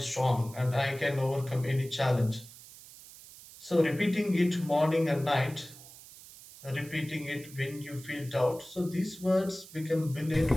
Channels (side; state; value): right; noise; hiss, 18 dB below the sound